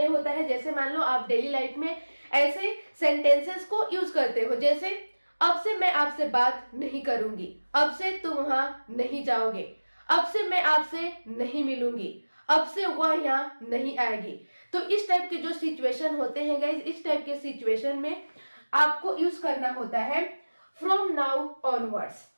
होता है, जैसे मान लो आप डेली लाइफ में ऐसे सेंटेंसेस को यूज करते हो, जैसे अब से मैं आपसे बात नहीं करूंगी, अब से तुम वहां नहीं जाओगे, अब से मैं आपसे नहीं मिलूंगी, अब से वह यहाँ नहीं आएगी। तो इस टाइप के जो सिचुएशन होते हैं गाइज, इस टाइप के सिचुएशन में आपको यूज करना होता है फ्रॉम नाउ ऑनवर्ड्स।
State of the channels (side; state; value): both; inverted; correlation -1.00